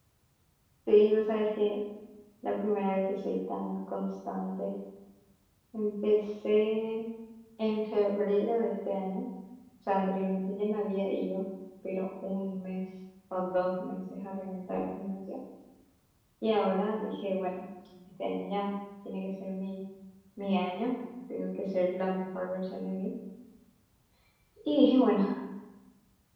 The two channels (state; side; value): identical; both; correlation 1.00